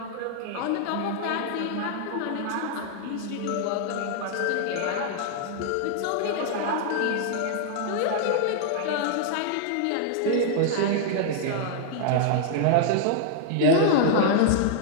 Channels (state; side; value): different; both; correlation -0.01